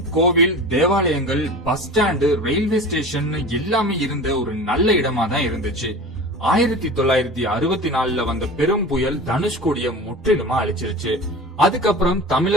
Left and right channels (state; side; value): normal; both; correlation 0.35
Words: கோவில், தேவாலயங்கள், பஸ் ஸ்டாண்டு, ரயில்வே ஸ்டேஷன் எல்லாமே இருந்த ஒரு நல்ல இடமா தான் இருந்துச்சு. 1964 வந்த பெரும் புயல் தனுஷ்கோடிய முற்றிலுமா அழிச்சிருச்சு. அதுக்கப்புறம்